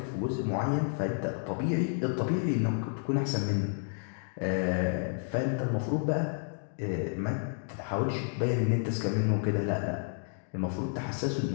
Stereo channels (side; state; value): right; silent; digital silence